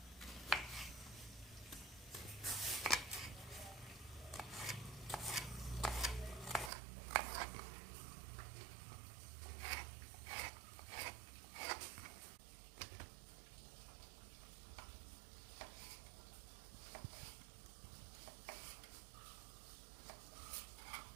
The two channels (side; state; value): left; drops out; at 6.7 s